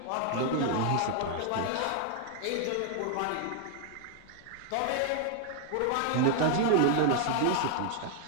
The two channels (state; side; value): different; both; correlation 0.00